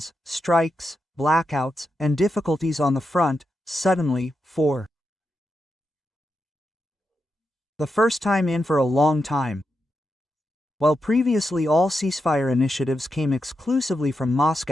strikes, blackouts, and difficulties on the front, suddenly, for the first time in for a long time. While previously all ceasefire initiatives came exclusively from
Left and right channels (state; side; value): normal; both; correlation 0.86